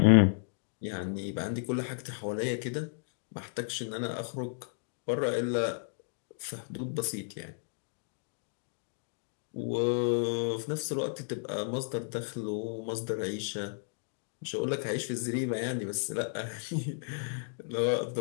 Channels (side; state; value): right; silent; digital silence